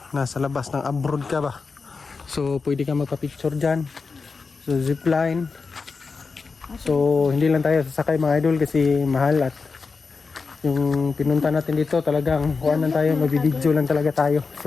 Nasa labas ng abroad ka ba? So, pwede ka magpa-picture dyan. So, zipline. So, hindi lang tayo sasakay mga idol kasi mahal at yung pinunta natin dito talagang kuhaan lang tayo, magbibideo lang talaga tayo.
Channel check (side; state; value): right; quieter; 4.6 dB